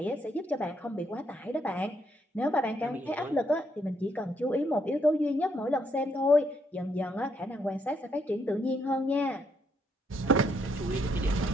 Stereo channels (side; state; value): both; normal; correlation 0.74